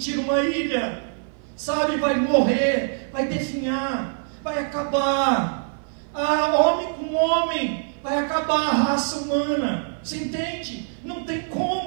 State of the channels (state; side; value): silent; left; 57 dB below the other